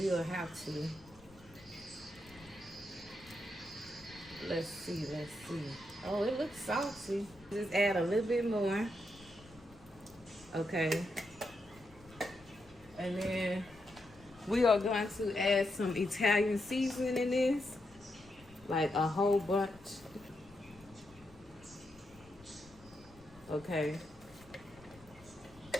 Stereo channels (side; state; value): left; noise; rumble, 24 dB below the sound